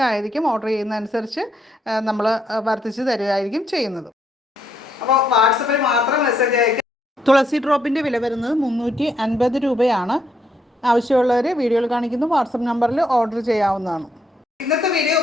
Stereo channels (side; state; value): both; normal; correlation 0.75